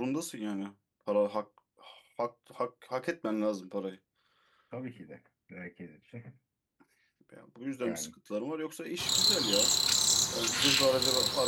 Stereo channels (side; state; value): both; identical; correlation 1.00